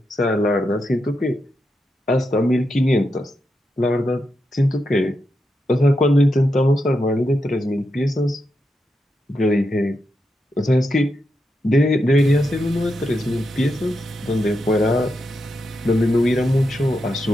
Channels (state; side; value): normal; both; correlation 0.85